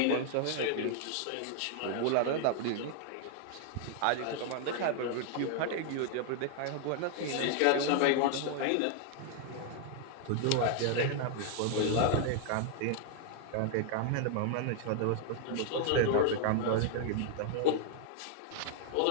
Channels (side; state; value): both; different; correlation 0.00